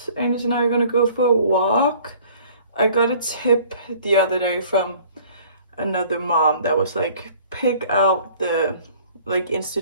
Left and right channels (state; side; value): inverted; both; correlation -0.53